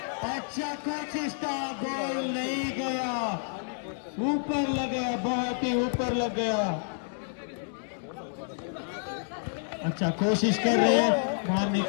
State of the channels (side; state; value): right; silent; digital silence